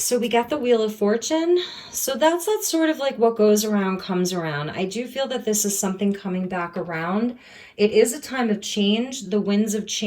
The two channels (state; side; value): identical; both; correlation 1.00